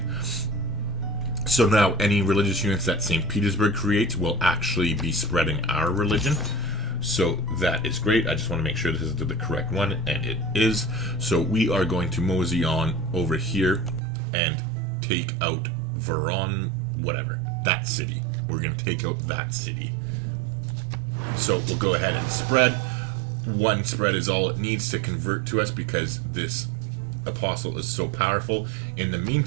So now any religious units that St. Petersburg creates will actually be spreading our religion. So that is great. I just want to make sure this is the correct one, and it is. So we are going to mosey on over here and take out Voron, whatever, that city. We're going to take out that city. So we'll go ahead and spread. One spread is all it needs to convert to us because this apostle is so powerful. In the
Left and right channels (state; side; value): drops out; left; at 14.0 s